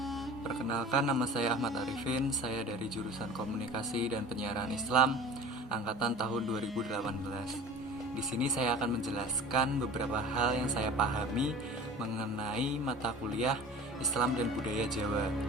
Perkenalkan, nama saya Ahmad Arifin. Saya dari jurusan Komunikasi dan Penyiaran Islam angkatan tahun 2018. Di sini saya akan menjelaskan beberapa hal yang saya pahami mengenai mata kuliah Islam dan Budaya Jawa.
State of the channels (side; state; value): both; normal; correlation 0.41